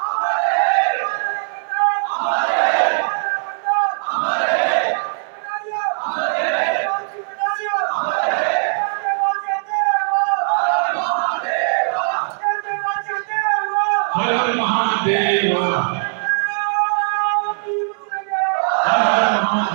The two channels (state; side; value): silent; left; 66 dB below the other